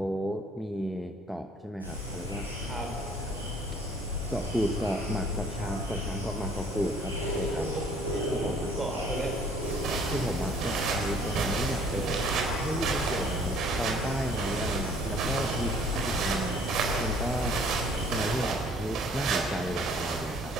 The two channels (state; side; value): normal; both; correlation 0.56